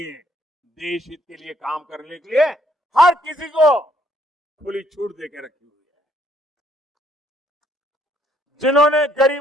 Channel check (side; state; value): both; normal; correlation 0.67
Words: देश हित के लिए काम करने के लिए हर किसी को खुली छूट देके रखी हुई है। जिन्होंने